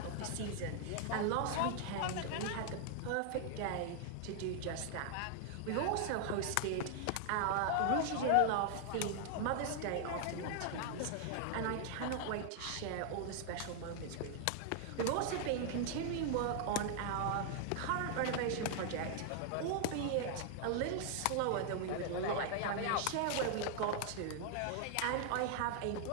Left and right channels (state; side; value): different; both; correlation 0.00